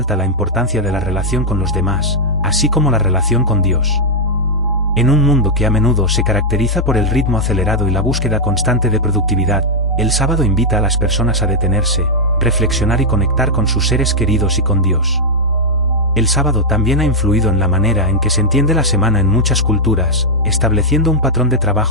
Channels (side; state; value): both; normal; correlation -0.03